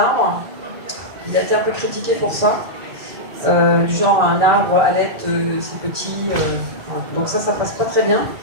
Il a été un peu critiqué pour ça. Du genre un arbre à l'aide, c'est petit. Donc ça passe pas très bien.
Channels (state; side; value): late; left; 1.8 ms